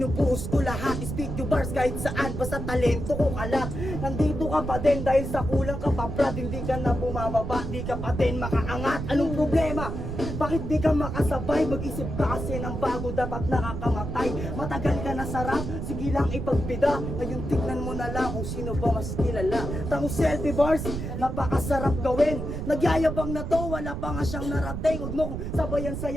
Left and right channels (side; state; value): right; noise; rumble, 5 dB below the sound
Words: ko lahat. Speak to bars kahit saan, basta talento ko kalat. Nandito ka pa din dahil sa kulang ka pa brad. Hindi ka na bumababa, di ka pa din makaangat. Anong problema? Bakit di ka makasabay? Mag-isip ka kasi ng bago, dapat nakakamatay. Matagal ka na sarap, sige lang ipagpida. Ngayon tignan mo na lang kung sino ba mas kilala. Tango selfie bars, napakasarap gawin. Nagyayabang na to, wala pa nga siyang narating. Huwag mo kung sabayan sa